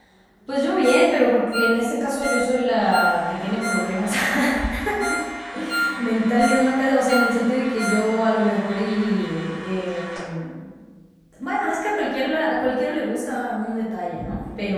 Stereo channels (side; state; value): both; identical; correlation 1.00